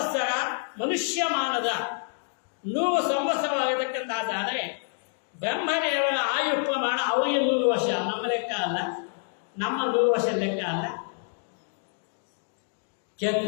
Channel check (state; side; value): silent; right; 60 dB below the other